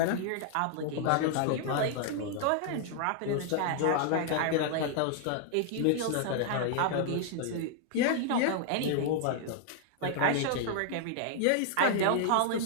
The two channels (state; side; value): different; both; correlation 0.00